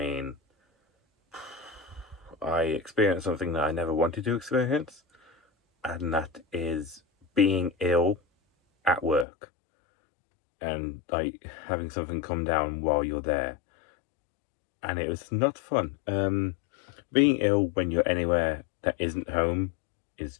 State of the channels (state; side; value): drops out; right; at 9.2 s